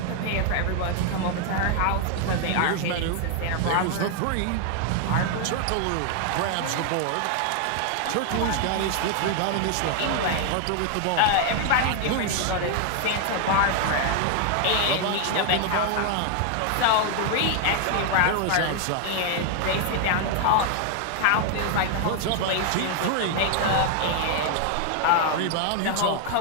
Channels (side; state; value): both; different; correlation 0.00